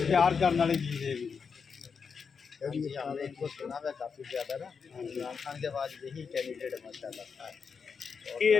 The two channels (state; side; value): quieter; right; 5.9 dB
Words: प्यार करने वाली चीज़ है। इनको सुना हुआ काफ़ी ज़्यादा ना, इमरान खान के बाद यही कैंडिडेट माशाल्लाह है। ये